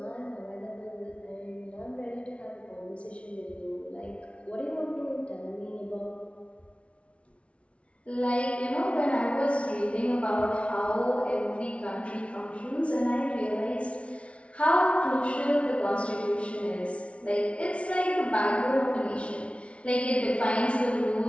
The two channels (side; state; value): right; late; 0.061 ms